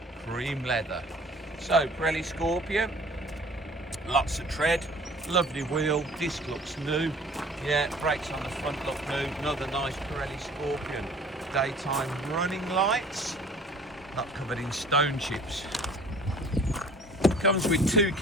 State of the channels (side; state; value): both; normal; correlation 0.50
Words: cream leather. So Pirelli Scorpion, lots of tread, lovely wheel, disc looks new. Yeah, brakes on the front look new. Another nice Pirelli Scorpion. Daytime running lights, not covered in stone chips. Comes with 2